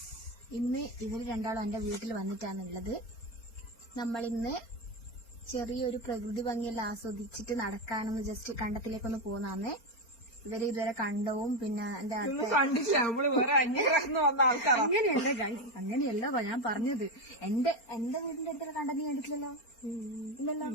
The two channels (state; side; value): late; right; 4.4 ms